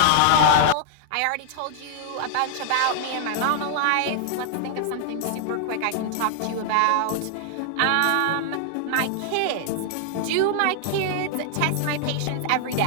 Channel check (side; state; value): both; different; correlation -0.01